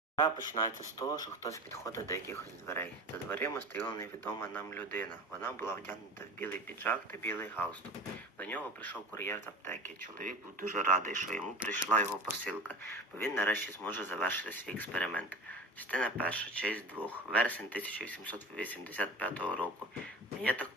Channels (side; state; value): both; normal; correlation 0.35